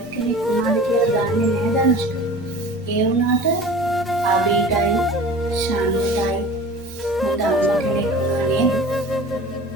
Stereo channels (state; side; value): normal; both; correlation 0.40